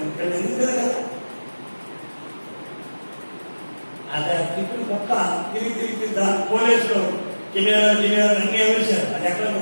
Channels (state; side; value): inverted; both; correlation -1.00